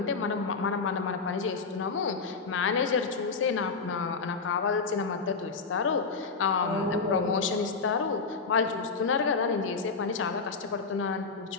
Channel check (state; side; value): quieter; right; 4.7 dB